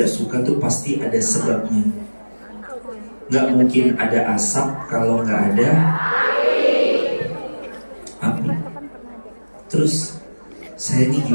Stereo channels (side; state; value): both; inverted; correlation -1.00